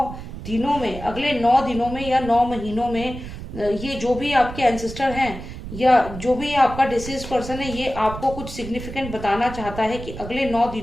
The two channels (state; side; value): noise; right; rumble, 10 dB below the sound